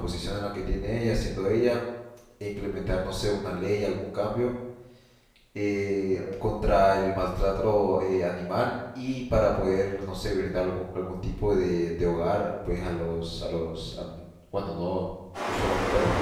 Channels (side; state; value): both; identical; correlation 1.00